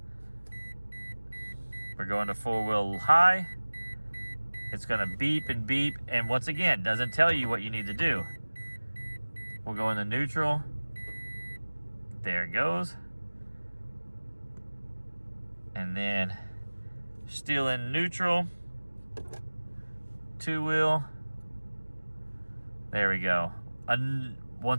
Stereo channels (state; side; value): inverted; both; correlation -1.00